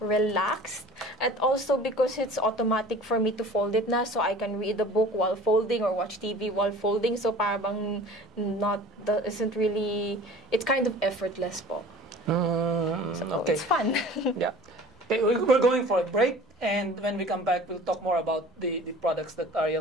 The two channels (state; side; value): normal; both; correlation 0.44